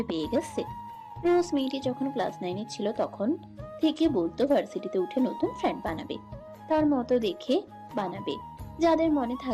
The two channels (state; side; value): identical; both; correlation 1.00